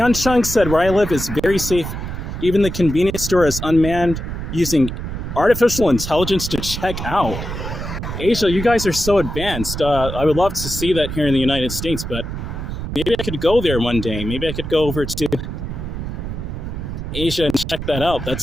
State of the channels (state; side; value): noise; right; rumble, 6 dB below the sound